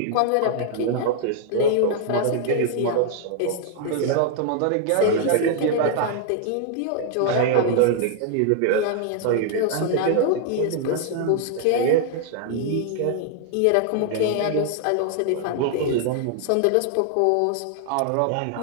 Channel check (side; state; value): both; different; correlation 0.00